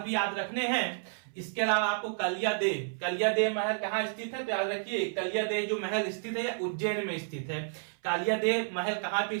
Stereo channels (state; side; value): silent; left; 57 dB below the other